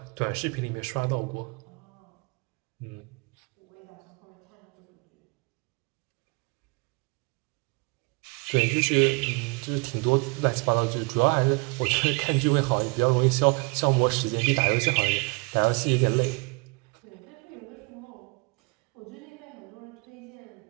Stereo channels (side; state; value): left; quieter; 30.0 dB